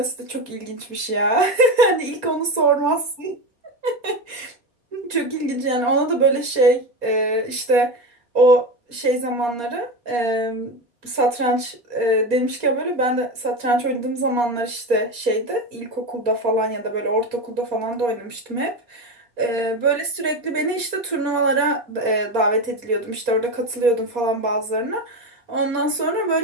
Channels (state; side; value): late; left; 4.2 ms